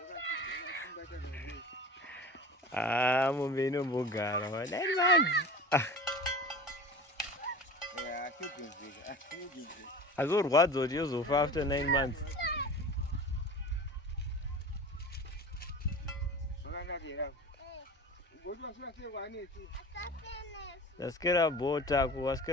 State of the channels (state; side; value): normal; both; correlation 0.36